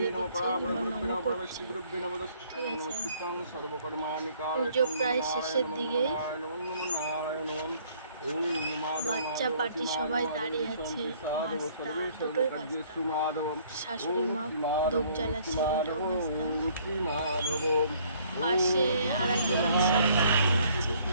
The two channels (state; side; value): inverted; both; correlation -0.61